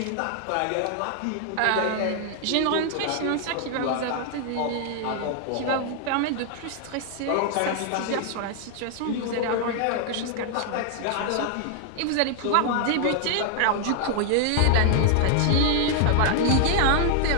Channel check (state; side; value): different; both; correlation 0.00